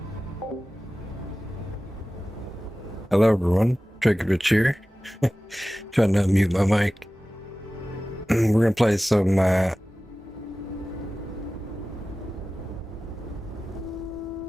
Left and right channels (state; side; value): normal; both; correlation 0.96